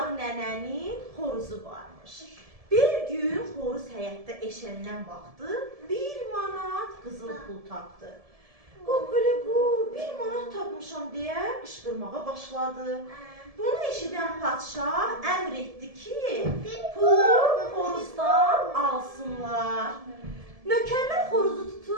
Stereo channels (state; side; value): late; left; 1.7 ms